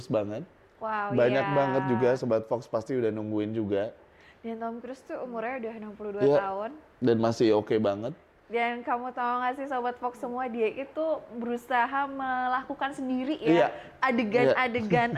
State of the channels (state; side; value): identical; both; correlation 1.00